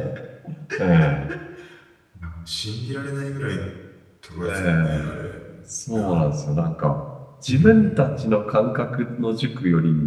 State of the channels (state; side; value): identical; both; correlation 1.00